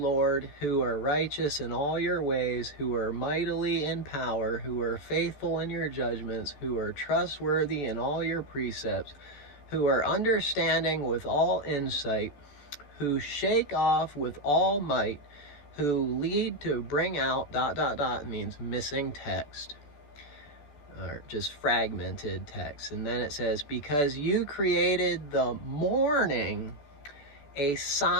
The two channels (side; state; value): right; late; 14 ms